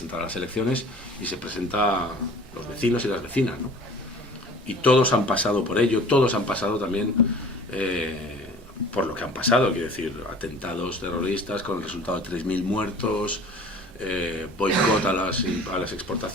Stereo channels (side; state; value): both; normal; correlation 0.45